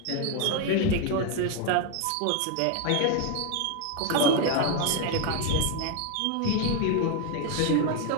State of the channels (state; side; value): different; both; correlation 0.01